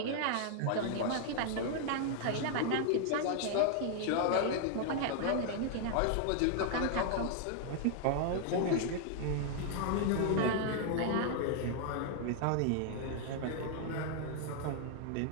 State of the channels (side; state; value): both; different; correlation 0.00